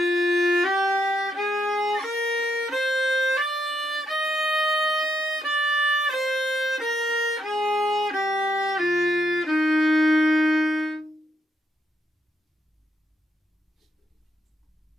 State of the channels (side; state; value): both; normal; correlation 0.80